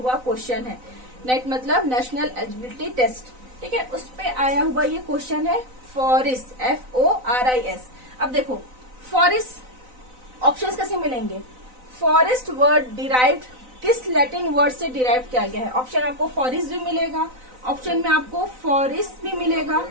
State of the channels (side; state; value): left; late; 4.0 ms